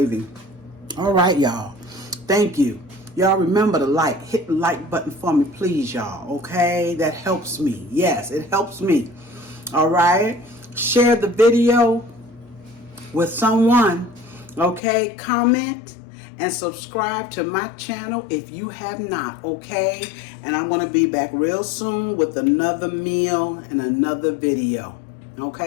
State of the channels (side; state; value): right; drops out; at 14.8 s